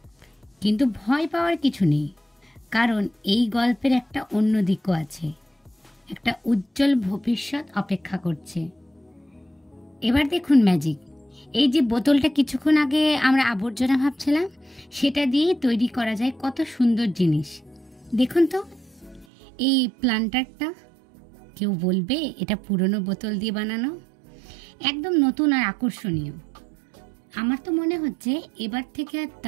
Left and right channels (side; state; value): left; drops out; at 19.2 s